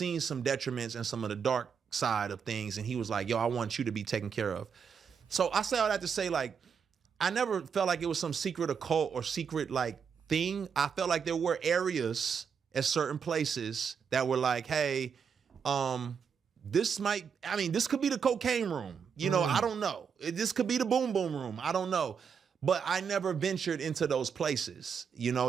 some detriments and some of the dark side of things. And he was like, yo, I want you to be taken care of. So I say all that to say, like, I never felt like it was some secret occult or secret like thing. I felt like there were areas at certain places that were like, hey, this could be the cocaine room. You know, I don't know. This could be the boom boom room. I don't know. But I never ventured into those places. You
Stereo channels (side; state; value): left; quieter; 6.7 dB